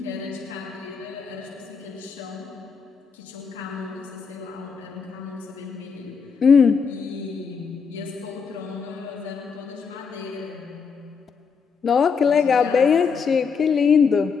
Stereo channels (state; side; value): quieter; right; 5.9 dB